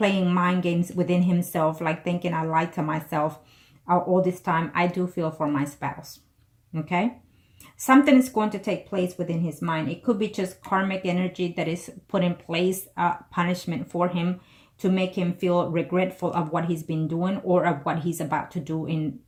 mind games within himself, like thinking I lied to myself all this time. I do feel for my spouse. Okay? Something is going to take place within his mind. It could be just karmic energy that is put in place, punishment for him to make him feel regretful of what he's been doing or of what he's about to do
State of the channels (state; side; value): identical; both; correlation 1.00